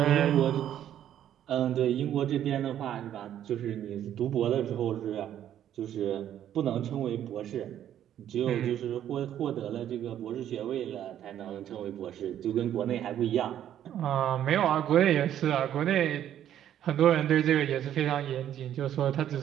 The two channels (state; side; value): quieter; left; 10.8 dB